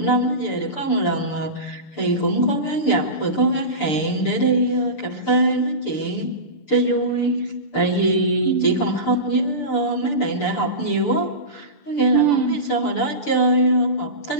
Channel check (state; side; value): late; right; 6.8 ms